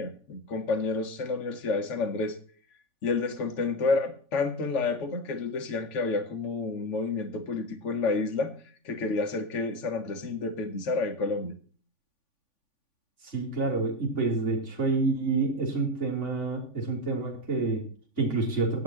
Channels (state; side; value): late; right; 3.5 ms